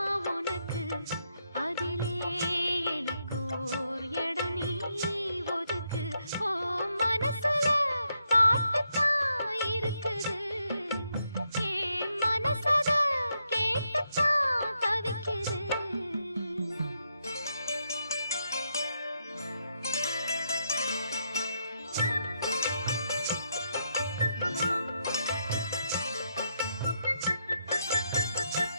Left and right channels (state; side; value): inverted; both; correlation -0.80